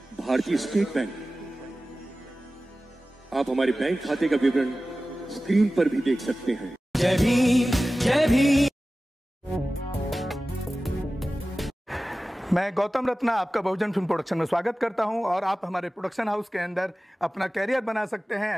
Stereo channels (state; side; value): normal; both; correlation 0.96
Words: भारतीय स्टेट बैंक। आप हमारे बैंक खाते का विवरण स्क्रीन पर भी देख सकते हैं। जय भीम, जय भीम। मैं गौतम रत्ना आपका बहुजन फिल्म प्रोडक्शन में स्वागत करता हूं और आप हमारे प्रोडक्शन हाउस के अंदर अपना कैरियर बना सकते